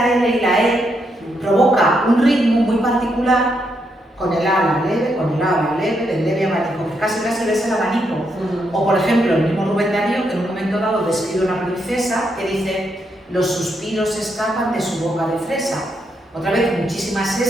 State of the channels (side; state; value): both; normal; correlation 0.79